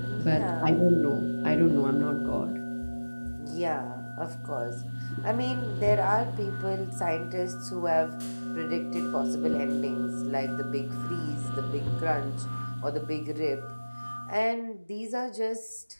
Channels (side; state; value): both; inverted; correlation -1.00